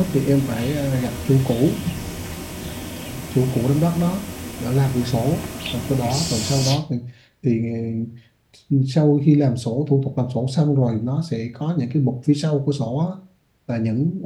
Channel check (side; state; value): both; identical; correlation 1.00